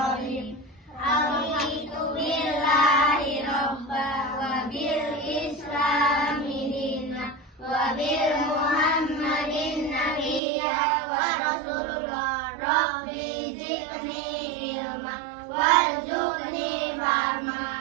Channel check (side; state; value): left; drops out; at 10.4 s